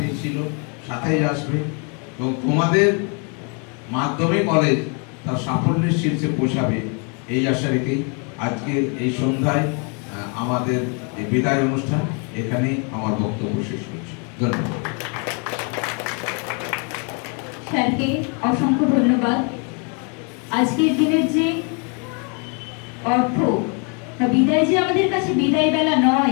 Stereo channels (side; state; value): right; quieter; 36.5 dB